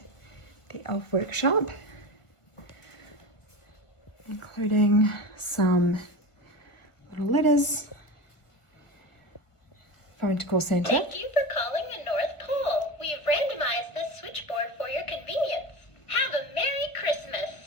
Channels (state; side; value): late; right; 1.5 ms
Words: the elf workshop, including some little letters. Phone to call Santa. Thank you for calling the North Pole. We have randomized this switchboard for your convenience. Have a Merry